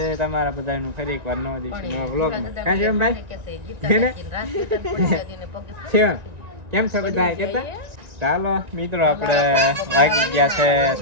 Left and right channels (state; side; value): late; left; 1.9 ms